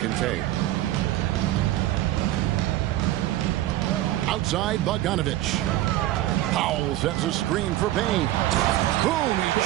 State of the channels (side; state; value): left; quieter; 15.0 dB